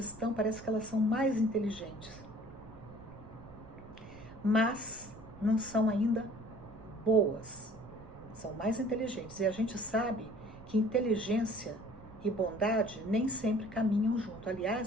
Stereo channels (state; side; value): noise; right; rumble, 18 dB below the sound